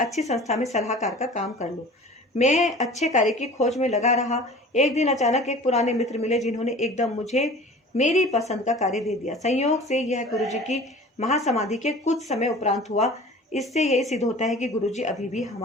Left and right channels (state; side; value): normal; both; correlation 0.42